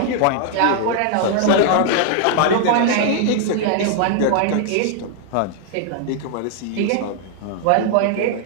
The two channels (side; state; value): both; different; correlation 0.00